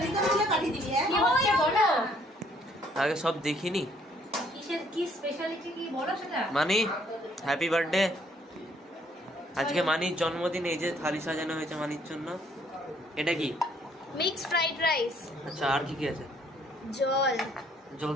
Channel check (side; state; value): both; normal; correlation 0.64